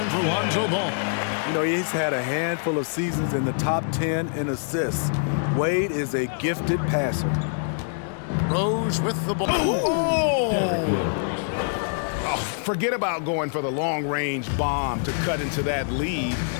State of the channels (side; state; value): right; silent; 62 dB below the other